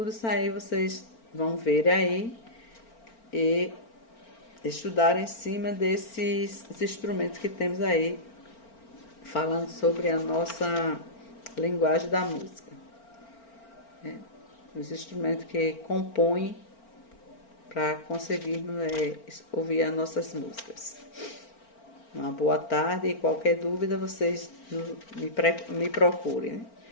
isso aí vocês vão ver aí e estudar em cima desses instrumentos que temos aí, falando sobre a nossa linguagem da música. Os instrumentos que compõem para conseguirmos ouvir as nossas músicas. Uma boa tarde e qualquer dúvida vocês me procurem.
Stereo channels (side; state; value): right; late; 4.4 ms